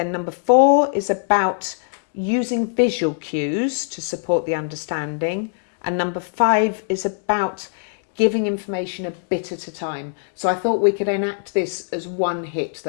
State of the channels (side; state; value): right; silent; digital silence